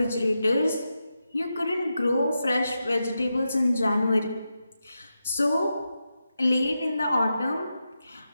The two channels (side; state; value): both; inverted; correlation -0.88